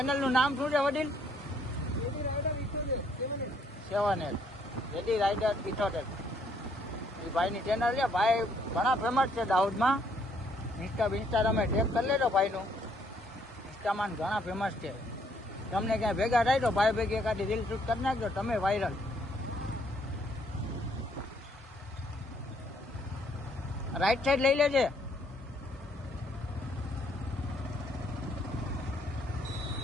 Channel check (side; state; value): both; normal; correlation 0.67